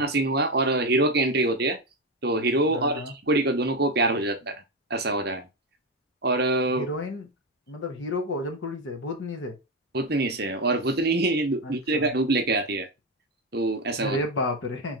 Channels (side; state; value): both; normal; correlation 0.11